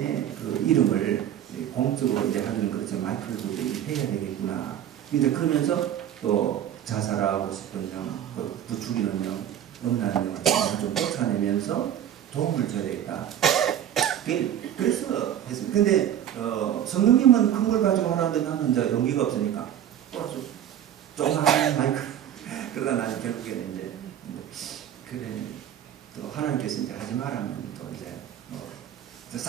그 이름을 공적으로 이제 하는 그렇죠. 마이크를 좀 해야 되겠구나. 근데 그러면서 또 자살하고 싶은 영, 부추기는 영, 음란한 영을 좀 쫓아내면서 도움을 줘야 되겠다. 그래서 했습니다. 근데 성령님은 큰 걸 가지고 하라는데 나는 이제 용기가 없으니까 또 아주 조그마한 마이크 그러다 나는 결국에는 이제 그래 또 하나님께서 이제 하지 말라면 또 이제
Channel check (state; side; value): quieter; left; 10.6 dB